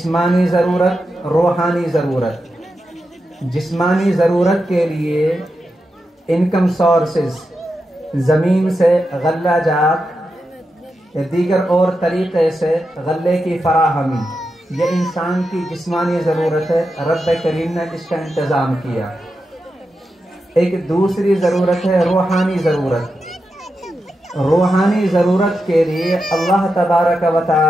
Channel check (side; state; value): both; normal; correlation 0.88